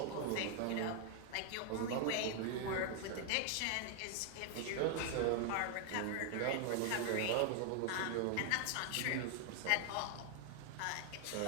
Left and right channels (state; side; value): different; both; correlation 0.00